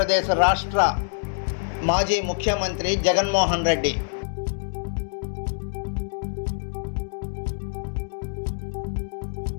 రాష్ట్ర మాజీ ముఖ్యమంత్రి జగన్మోహన్ రెడ్డి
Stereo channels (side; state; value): right; silent; digital silence